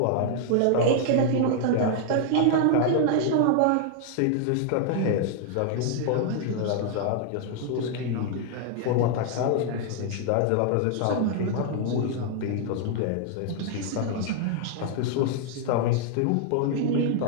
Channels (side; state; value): both; different; correlation 0.00